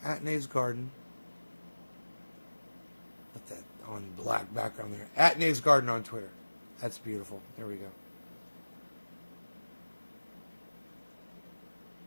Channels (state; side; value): inverted; both; correlation -1.00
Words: At Nays Garden. Put that on black background there. At Nays Garden on Twitter. That's beautiful. There we go.